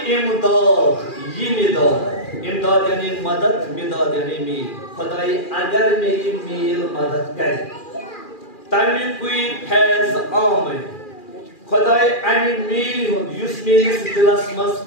इमदाद यानी मदद, मिदाद यानी मील। खुदाई अगर मेरी मील मदद करे तमी कोई फैज आमे खुदाई अमी मील युस मेरिस दिलस मज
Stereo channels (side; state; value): right; late; 2.4 ms